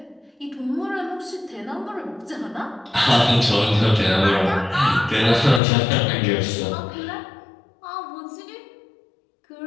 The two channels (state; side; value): drops out; right; at 5.6 s